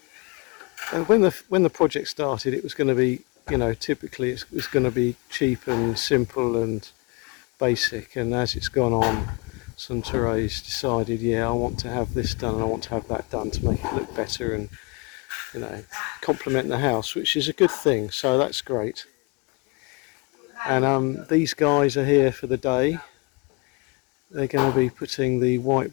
And when the project started, it was going to be, you know, typically it's going to be cheap and simple and basic. And as it's gone on, Suntore's decided, yeah, I want to have this done and I want to have that done to make it look better and, you know, complement the house, which is a good thing. So that's great. And these guys are here for the day. They're going to be putting the white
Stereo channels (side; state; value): right; quieter; 29.3 dB